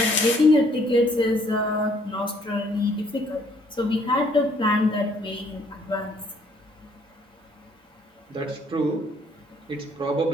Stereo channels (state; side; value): normal; both; correlation 0.64